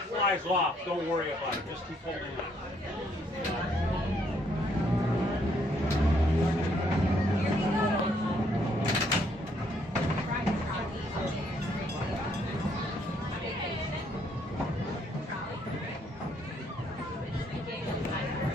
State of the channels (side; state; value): both; normal; correlation 0.69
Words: flies off, don't worry about it. Just keep holding on.